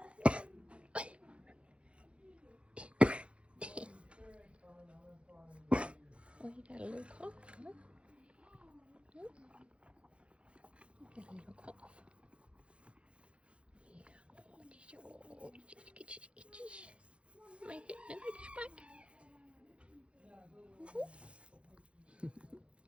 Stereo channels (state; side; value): late; left; 0.060 ms